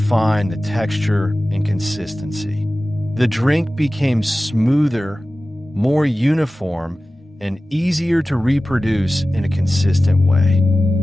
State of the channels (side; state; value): both; normal; correlation 0.96